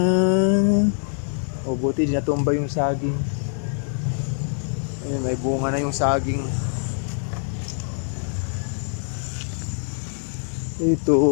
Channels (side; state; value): right; silent; 63 dB below the other